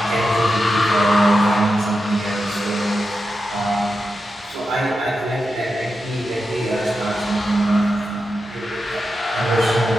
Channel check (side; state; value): both; normal; correlation 0.89